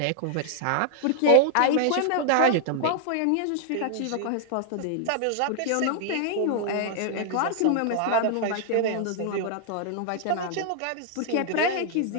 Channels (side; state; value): both; different; correlation 0.00